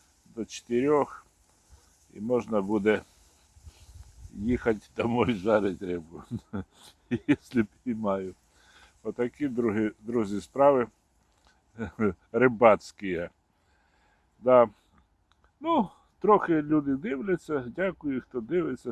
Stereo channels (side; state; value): both; identical; correlation 1.00